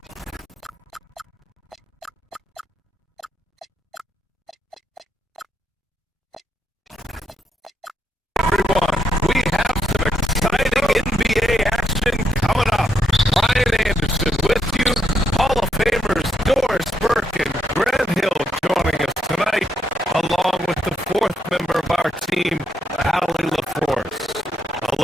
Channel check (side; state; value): both; normal; correlation 0.78